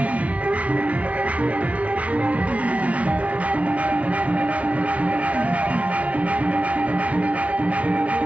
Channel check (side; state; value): left; late; 0.065 ms